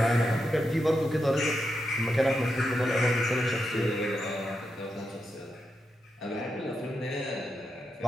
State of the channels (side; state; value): both; normal; correlation 0.86